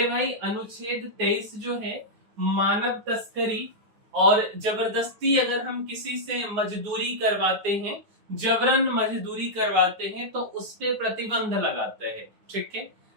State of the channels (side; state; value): left; late; 9.5 ms